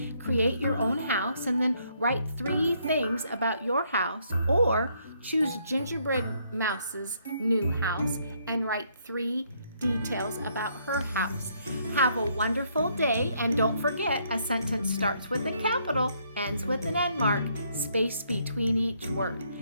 create your own house and then write 3 things about your house, or choose Gingerbread Mouse's new house and write 3 details about her house. Have a wonderful day, and don't forget, a sentence starts with a capital, ends with an end mark, space between each word.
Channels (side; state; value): both; inverted; correlation -0.70